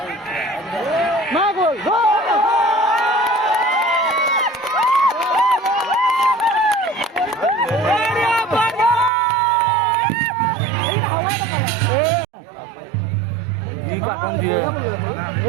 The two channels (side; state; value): left; drops out; at 9.1 s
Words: না গোল দিয়ে